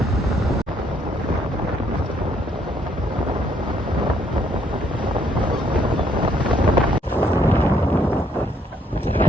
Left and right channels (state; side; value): normal; both; correlation 0.70